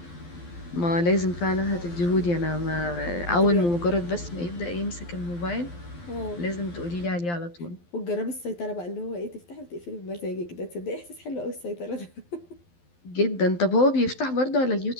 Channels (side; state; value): right; late; 12 ms